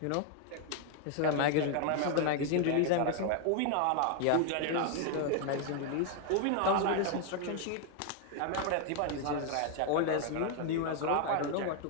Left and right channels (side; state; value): both; different; correlation 0.00